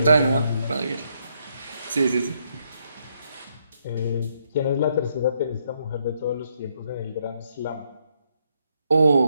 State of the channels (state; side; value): inverted; both; correlation -0.75